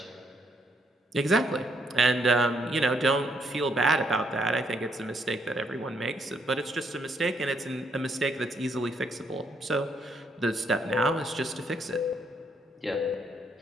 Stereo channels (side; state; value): both; normal; correlation 0.73